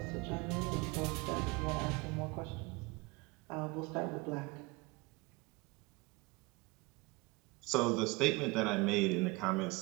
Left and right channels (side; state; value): left; quieter; 24.3 dB